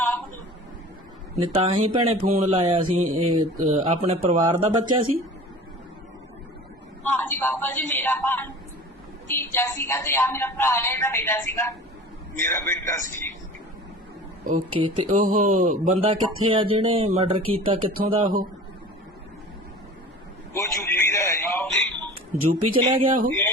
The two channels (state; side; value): normal; both; correlation 0.40